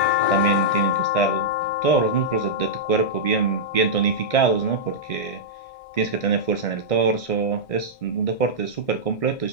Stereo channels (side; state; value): right; late; 1.6 ms